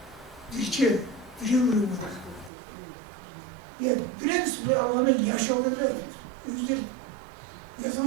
Dirçe, biri vuruyor. Ya biraz bu alanı yaşadılar. Yüzler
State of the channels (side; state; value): left; drops out; at 2.5 s